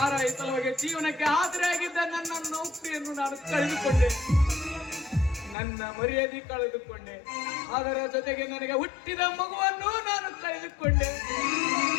ಸಲುವಾಗಿ ಜೀವನಕ್ಕೆ ಆಸರೆಯಾಗಿದ್ದ ನನ್ನ ನೌಕರಿಯನ್ನು ನಾನು ಕಳೆದುಕೊಂಡೆ, ನನ್ನ ಮರ್ಯಾದೆ ಕಳೆದುಕೊಂಡೆ, ಅದರ ಜೊತೆಗೆ ನನಗೆ ಹುಟ್ಟಿದ ಮಗುವನ್ನು ನಾನು ಕಳೆದುಕೊಂಡೆ,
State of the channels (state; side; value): drops out; right; at 5.6 s